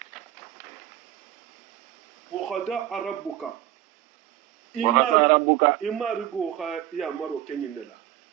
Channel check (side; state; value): left; quieter; 13.2 dB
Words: wa qada rabbuka imarigo ha ya maro kenyinela